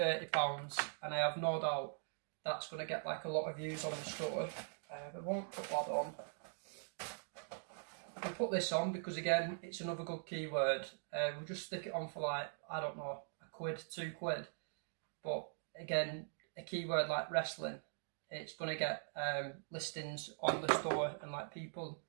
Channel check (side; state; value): left; silent; digital silence